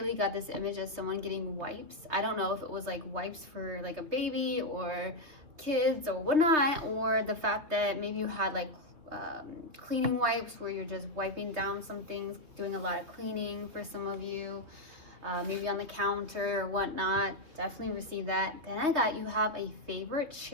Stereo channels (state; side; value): late; left; 3.2 ms